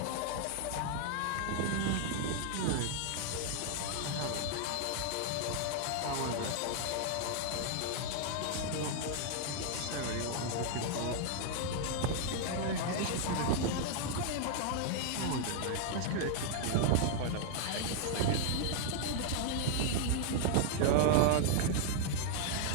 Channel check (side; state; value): both; different; correlation 0.00